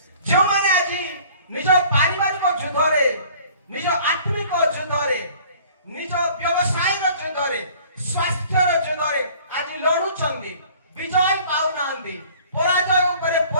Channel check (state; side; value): inverted; both; correlation -0.51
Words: ଯେଉଁମାନେ ଆଜି ନିଜ ପାରିବାରିକ ଯୁଦ୍ଧରେ, ନିଜ ଆତ୍ମିକ ଯୁଦ୍ଧରେ, ନିଜ ବ୍ୟବସାୟର ଯୁଦ୍ଧରେ, ସ୍ୱାସ୍ଥ୍ୟର ଯୁଦ୍ଧରେ ଆଜି ଲଢୁଛନ୍ତି, ବିଜୟ ପାଉନାହାନ୍ତି, ପରାଜୟ ଉପରେ